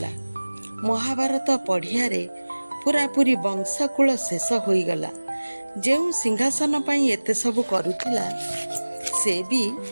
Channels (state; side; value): inverted; both; correlation -1.00